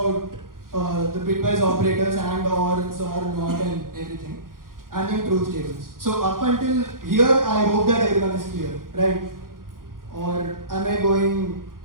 the bitwise operators and or, XOR, NOT and everything. And then truth tables. So up until here, I hope that everyone is clear, right? Or am I going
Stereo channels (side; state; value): left; late; 0.91 ms